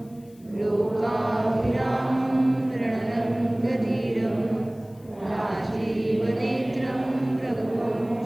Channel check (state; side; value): noise; left; hiss, 29 dB below the sound